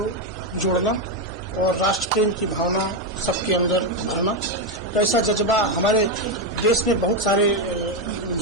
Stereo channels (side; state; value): both; normal; correlation 0.06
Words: जोड़ना और राष्ट्र प्रेम की भावना सबके अंदर भरना। तो ऐसा जज्बा हमारे देश में बहुत सारे